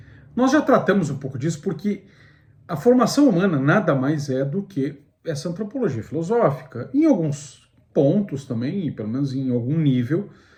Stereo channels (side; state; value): both; identical; correlation 1.00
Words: Nós já tratamos um pouco disso porque a formação humana nada mais é do que essa antropologia filosófica, em alguns pontos também, pelo menos em algum nível,